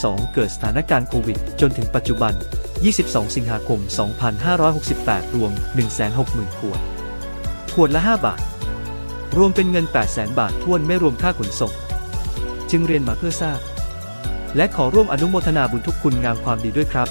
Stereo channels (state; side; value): inverted; both; correlation -1.00